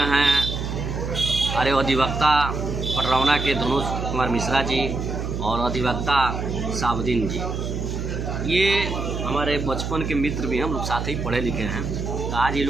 हैं अरे अधिवक्ता पटरौना के धनुष कुमार मिश्रा जी और अधिवक्ता साबुद्दीन जी। ये हमारे बचपन के मित्र भी हैं, हम लोग साथ ही पढ़े लिखे हैं। तो आज ये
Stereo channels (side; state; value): right; noise; hum, 4 dB below the sound